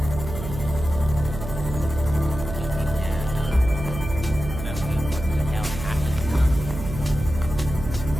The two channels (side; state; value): right; noise; hum, 8 dB below the sound